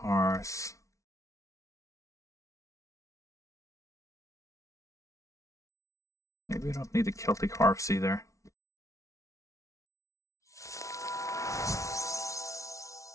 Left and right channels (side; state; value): right; late; 0.15 ms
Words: Maybe we don't need the Celtic harps either.